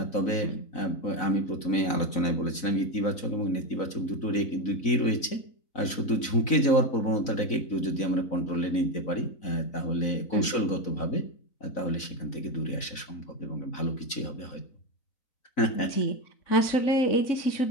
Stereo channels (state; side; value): late; right; 3.9 ms